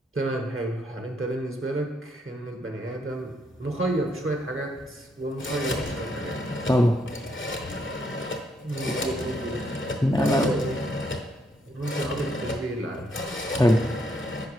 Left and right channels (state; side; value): normal; both; correlation 0.74